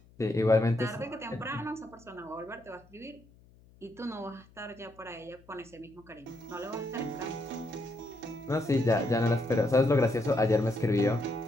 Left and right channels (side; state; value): left; noise; hum, 27 dB below the sound